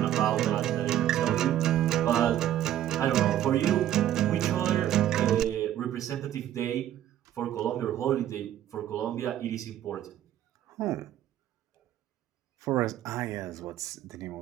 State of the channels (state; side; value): quieter; left; 11.9 dB